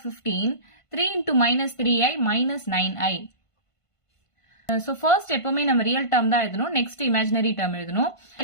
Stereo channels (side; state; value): right; late; 1.5 ms